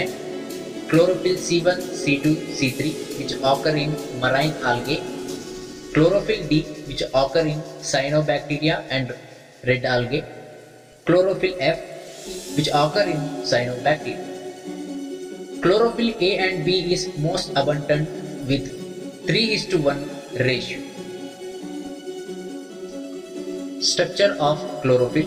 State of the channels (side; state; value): both; identical; correlation 1.00